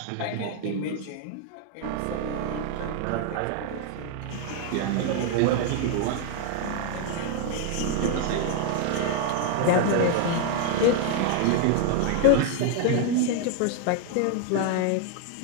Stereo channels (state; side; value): different; both; correlation 0.01